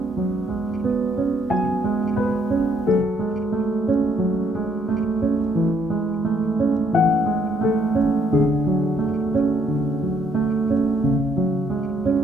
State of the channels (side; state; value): both; normal; correlation 0.70